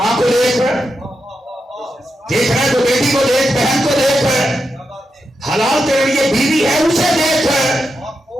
کو دیکھ رہے، دیکھ رہے ہیں تو بیٹی کو دیکھ، بہن کو دیکھ، حلال تیرے لیے بیوی ہے اسے دیکھ،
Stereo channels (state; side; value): normal; both; correlation 0.86